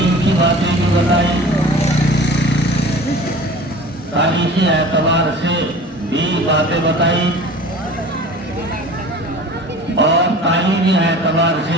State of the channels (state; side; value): normal; both; correlation 0.41